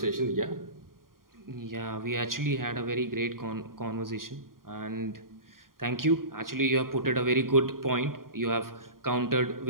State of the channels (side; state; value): left; late; 0.91 ms